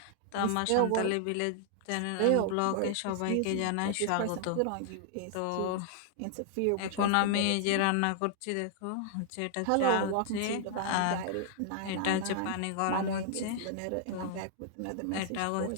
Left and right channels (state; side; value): different; both; correlation -0.01